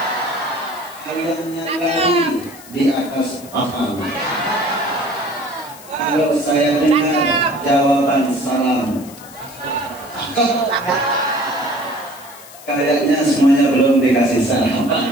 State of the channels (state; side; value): noise; left; hiss, 19 dB below the sound